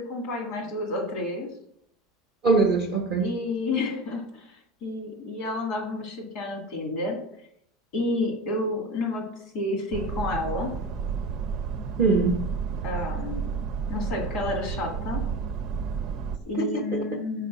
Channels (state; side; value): normal; both; correlation 0.30